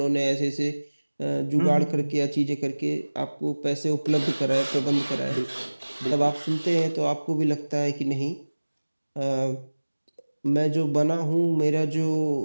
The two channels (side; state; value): both; inverted; correlation -1.00